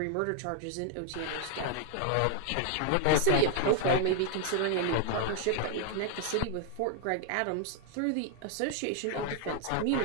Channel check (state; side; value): different; both; correlation 0.00